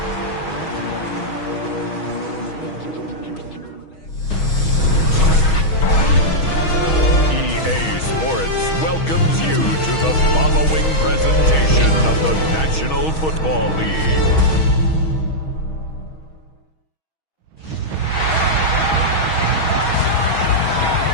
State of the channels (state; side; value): late; right; 6.3 ms